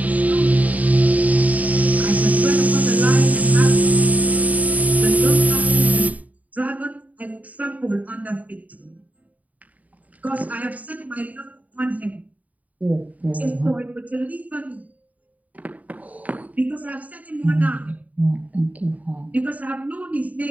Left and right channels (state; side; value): late; left; 0.073 ms